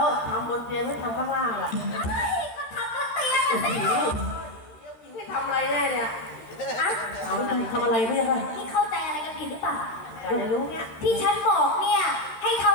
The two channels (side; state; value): right; late; 13 ms